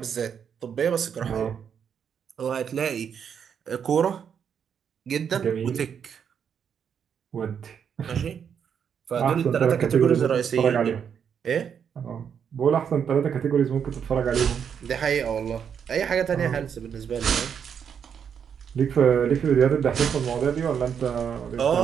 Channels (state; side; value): quieter; left; 7.6 dB